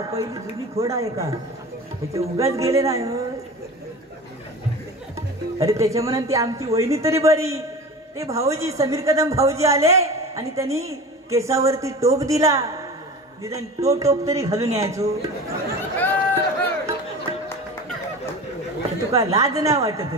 पहिली जुनी खोडा आहे का, त्याचे उगाच गेले नाही. अरे त्याच्या म्हणून ती आमची वहिनी तरी बरी, ते भाऊजी समीर कदम भाऊजी आले आणि त्यांनी केसावरती टोप दिला, निदान तो टोप तरी घालून यायचो. तुका लाज नाही वाटत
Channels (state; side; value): normal; both; correlation 0.34